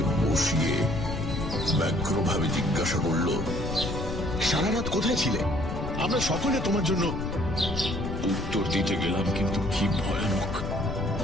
বসিয়ে ব্যগ্রভাবে জিজ্ঞাসা করলো, সারা রাত কোথায় ছিলে? আমরা সকলে তোমার জন্য। উত্তর দিতে গেলাম, কিন্তু কি ভয়ানক।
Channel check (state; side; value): noise; left; rumble, 5 dB below the sound